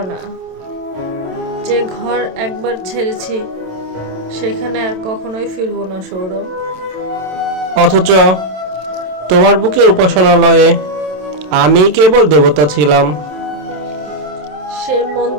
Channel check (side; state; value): left; late; 27 ms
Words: না। যে ঘর একবার ছেড়েছি সেখানে আর কখনোই ফিরবো না সৌরভ। অথচ তোমার বুকে উপাসনালয়ে আমি কেবল দেবতা ছিলাম। সেই